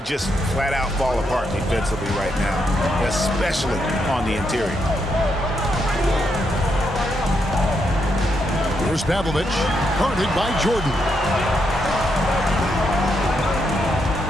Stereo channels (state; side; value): normal; both; correlation 0.80